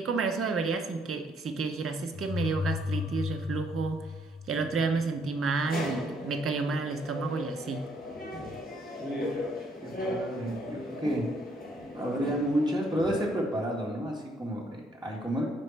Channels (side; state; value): both; normal; correlation 0.69